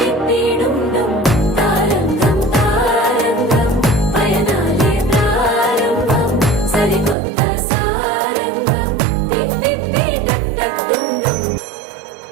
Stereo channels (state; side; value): drops out; left; at 7.2 s